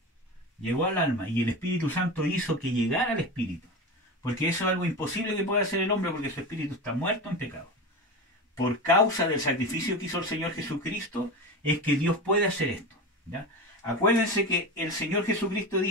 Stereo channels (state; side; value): normal; both; correlation 0.25